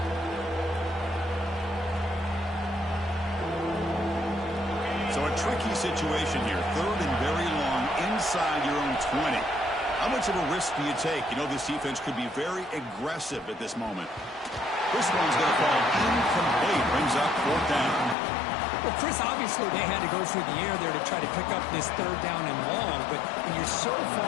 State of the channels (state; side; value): drops out; right; at 18.2 s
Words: So a tricky situation here. Third and very long inside your own 20. How much of a risk do you take? You know this defense could be very aggressive at this moment. This one's going to fall incomplete. Brings up fourth down. Well, Chris, obviously they had to go through the air there to try to pick up this third down and long, but when you're so